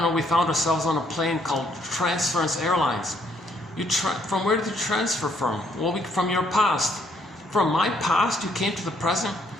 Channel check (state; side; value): normal; both; correlation 0.69